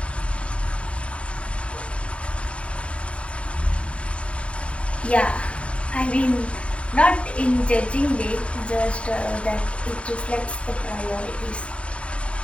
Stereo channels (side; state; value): right; late; 0.061 ms